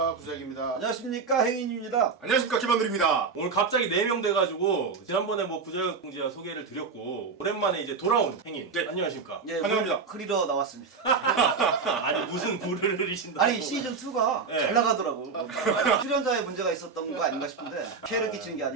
구자익입니다. 안녕하십니까 행인입니다. 안녕하십니까 김한들입니다. 오늘 갑자기 4명 돼가지고 지난번에 뭐 구자혁 공지와 소개를 드렸고 오랜만에 이제 돌아온 행인. 네. 안녕하십니까? 예, 환영합니다. 흐리러 나왔습니다. 아니 무슨 물을 흐리신다고? 아니 시즌 2가 네. 잘 나가더라고. 출연자의 문제가 있었던 거 아닌가 싶은데 피해를 끼치는 게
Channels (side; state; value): left; quieter; 5.1 dB